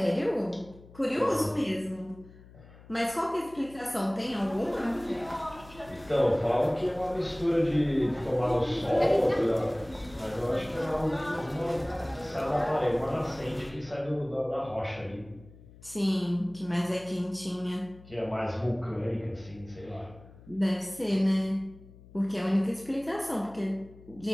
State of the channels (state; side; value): noise; left; hum, 21 dB below the sound